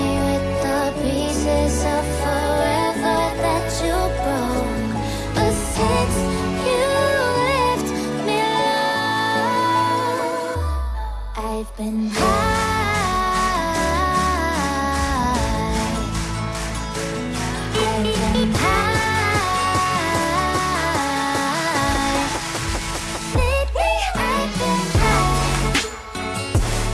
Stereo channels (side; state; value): both; identical; correlation 1.00